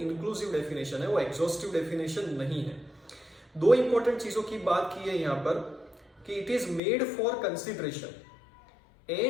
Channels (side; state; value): right; drops out; at 6.8 s